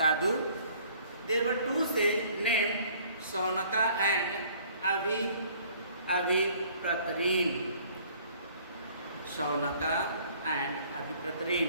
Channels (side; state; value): both; inverted; correlation -0.57